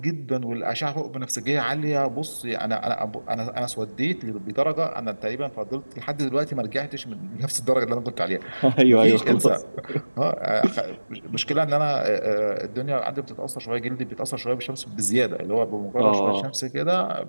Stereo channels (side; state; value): both; inverted; correlation -1.00